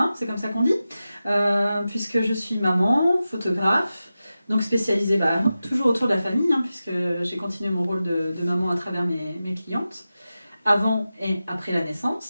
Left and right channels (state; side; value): inverted; both; correlation -0.93